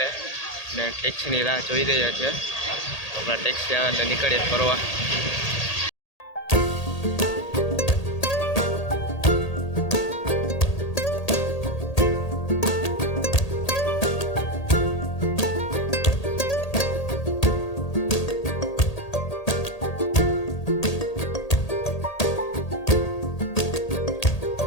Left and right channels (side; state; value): right; late; 1.8 ms